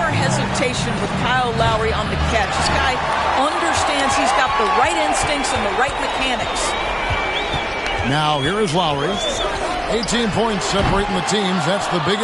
hesitation with Kyle Lowry on the catch. This guy understands he's got the right instincts and the right mechanics. Now here is Lowry. 18 points separating the teams. That's the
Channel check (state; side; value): identical; both; correlation 1.00